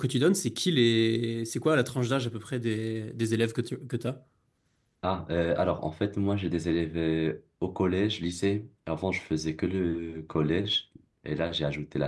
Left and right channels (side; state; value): both; identical; correlation 1.00